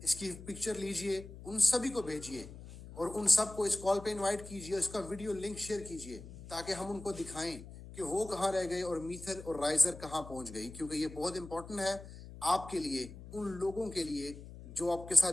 इसकी पिक्चर लीजिए, उन सभी को भेजिए और उन सबको इस कॉल पे इनवाइट कीजिए, इसका वीडियो लिंक शेयर कीजिए ताकि हम उनको दिखाएं कि वो कहाँ रह गए और मीथर और राइजर कहाँ पहुंच गई। क्योंकि ये बहुत इंपॉर्टेंट है आपके लिए, उन लोगों के लिए जो आपके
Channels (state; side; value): noise; left; hum, 14 dB below the sound